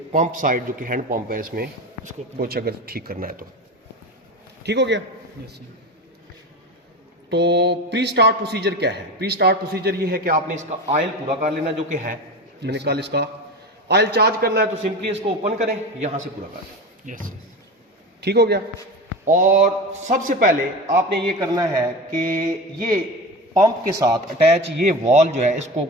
पंप साइड जो कि हैंड पंप है, इसमें उसको कुछ अगर ठीक करना है तो ठीक हो गया। तो प्री स्टार्ट प्रोसीजर क्या है? प्री स्टार्ट प्रोसीजर ये है कि आपने इसका ऑयल पूरा कर लेना जो कि है, मैंने कल इसका ऑयल चार्ज करना है तो सिंपली इसको ओपन करें, यहां से पूरा कर लें, ठीक हो गया। और सबसे पहले आपने ये करना है कि ये पंप के साथ अटैच ये वॉल जो है इसको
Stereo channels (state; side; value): normal; both; correlation 0.27